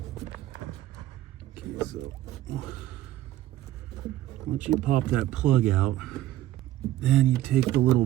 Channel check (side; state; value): left; quieter; 14.2 dB